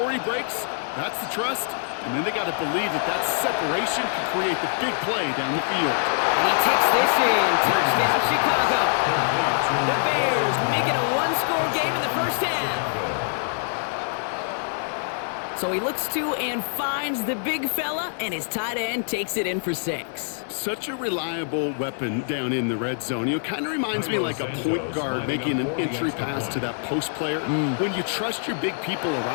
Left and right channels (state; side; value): silent; right; digital silence